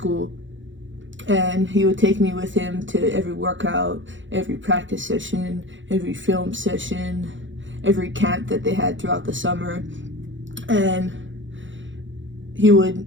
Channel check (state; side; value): late; left; 0.55 ms